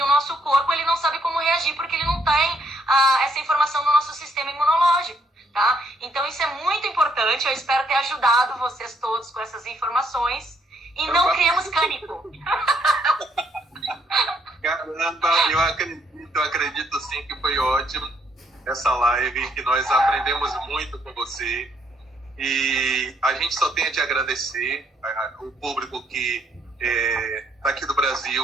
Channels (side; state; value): both; normal; correlation 0.71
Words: o nosso corpo, ele não sabe como reagir, porque ele não tem essa informação no nosso sistema imunológico, tá? Então, isso é muito importante. Eu espero ter ajudado vocês todos com essas informações. E não criemos cânico. Caramba, eu acredito sim que foi ótimo essa live, que nós aprendemos muito com você. E a gente só tem a te agradecer, o público que está aqui do